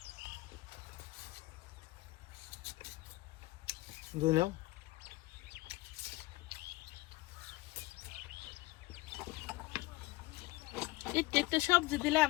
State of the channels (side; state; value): right; quieter; 20.1 dB